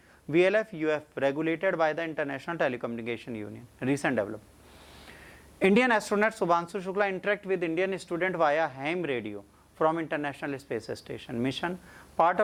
VLF UF regulated by the International Telecommunication Union. Recent development, Indian astronaut Subhanshu Shukla interact with Indian student via ham radio from International Space Station mission, part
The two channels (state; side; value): identical; both; correlation 1.00